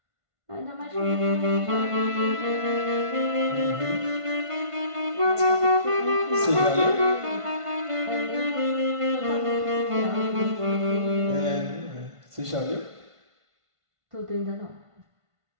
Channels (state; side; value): late; left; 1.5 ms